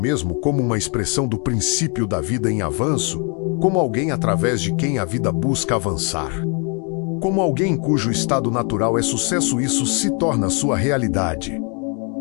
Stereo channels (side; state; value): right; quieter; 36.0 dB